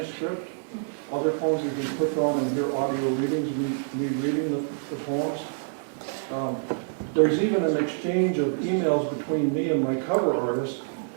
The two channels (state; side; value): silent; left; 60 dB below the other